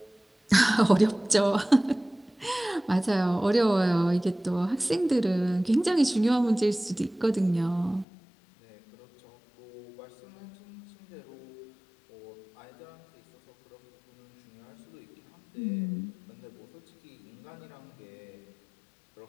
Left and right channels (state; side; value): drops out; right; at 8.1 s